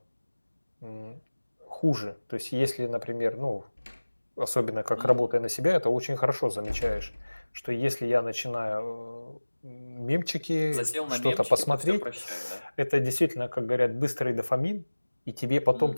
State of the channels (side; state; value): both; inverted; correlation -1.00